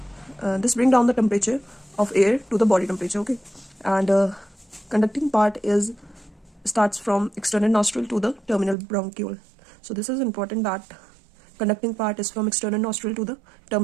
this bring down the temperature of air to the body temperature, okay. And conducting part is starts from external nostril to the terminal bronchiole. So this is important, that conducting part is from external nostril to the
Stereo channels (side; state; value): left; drops out; at 8.8 s